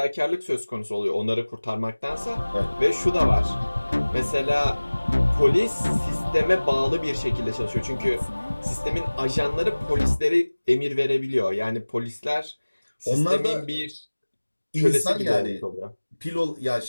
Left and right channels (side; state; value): both; inverted; correlation -1.00